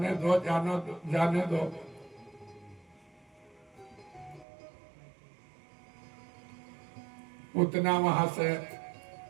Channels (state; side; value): drops out; left; at 4.5 s